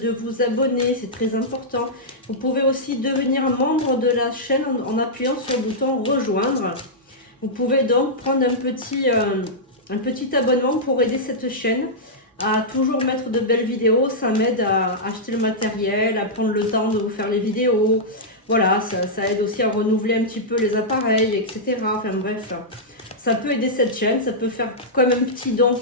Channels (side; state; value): both; normal; correlation -0.10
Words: vous abonner, c'est très important. Vous pouvez aussi devenir membre de la chaîne en appuyant sur le bouton rejoindre. Vous pouvez donc prendre un petit abonnement pour aider cette chaîne à toujours mettre de belles vidéos. Ça m'aide à acheter le matériel, à prendre le temps de vous faire les vidéos. Voilà, ça aide aussi à renouveler un petit peu les appareils, etc. Enfin bref, ça peut aider cette chaîne, ça peut faire comme un petit don